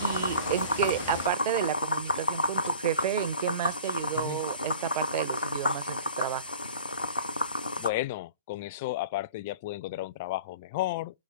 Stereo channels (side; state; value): both; inverted; correlation -0.41